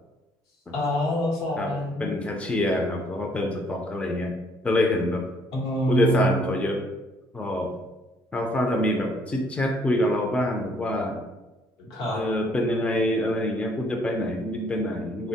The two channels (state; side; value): normal; both; correlation 0.65